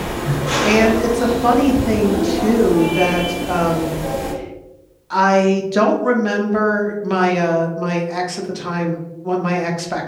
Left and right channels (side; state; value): both; identical; correlation 1.00